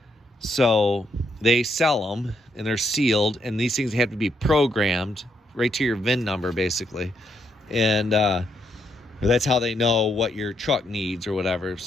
so they sell them and they're sealed, and these things have to be programmed right to your VIN number, basically. And that's how they know what your truck needs or whatever.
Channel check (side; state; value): both; normal; correlation 0.76